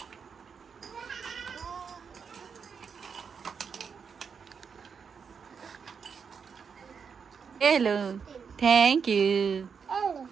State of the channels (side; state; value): left; quieter; 6.3 dB